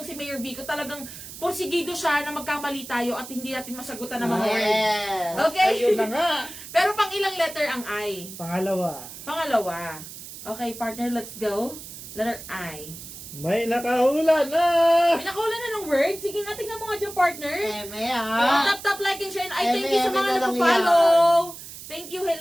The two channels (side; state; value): right; noise; hiss, 13 dB below the sound